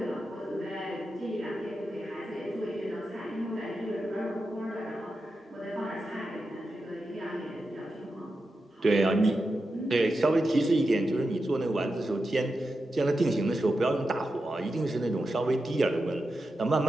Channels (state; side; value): normal; both; correlation 0.89